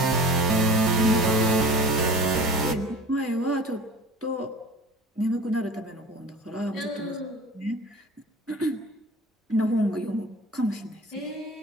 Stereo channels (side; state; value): both; normal; correlation 0.40